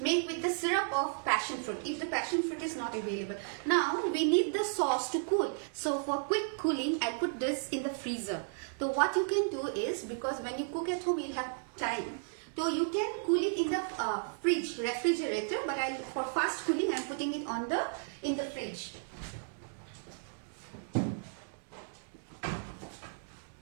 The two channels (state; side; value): silent; left; digital silence